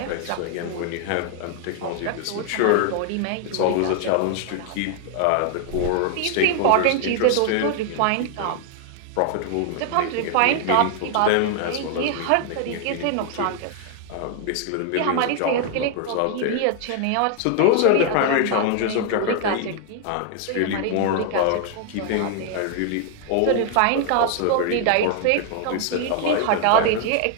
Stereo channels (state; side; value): different; both; correlation 0.00